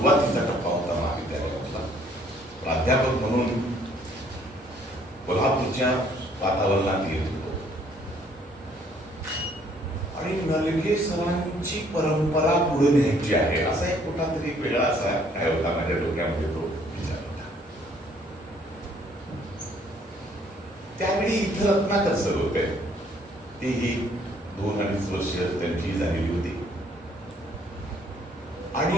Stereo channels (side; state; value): both; normal; correlation 0.63